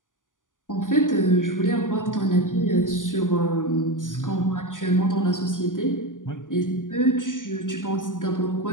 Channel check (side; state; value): right; late; 0.88 ms